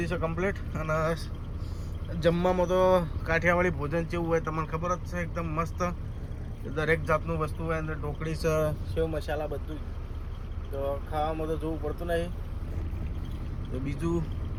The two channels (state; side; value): identical; both; correlation 1.00